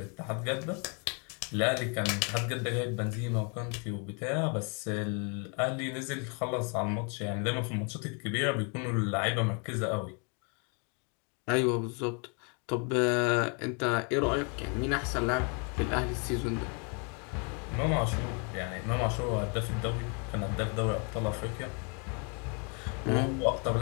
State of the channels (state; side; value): quieter; right; 36.2 dB